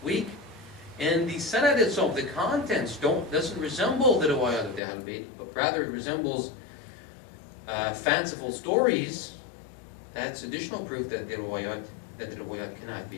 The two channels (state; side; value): drops out; right; at 4.8 s